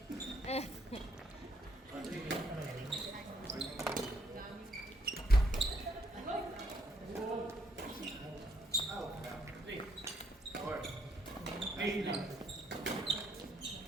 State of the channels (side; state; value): both; normal; correlation 0.71